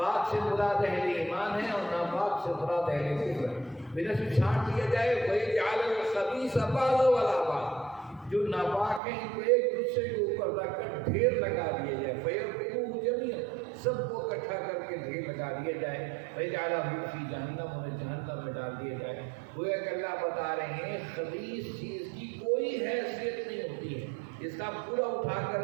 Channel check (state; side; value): drops out; left; at 9.0 s